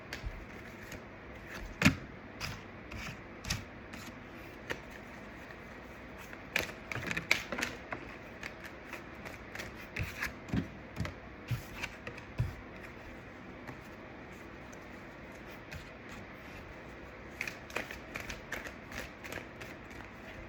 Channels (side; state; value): both; identical; correlation 1.00